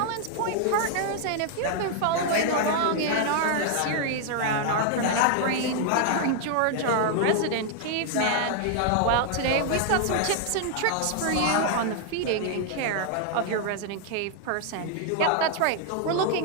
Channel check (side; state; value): both; different; correlation 0.00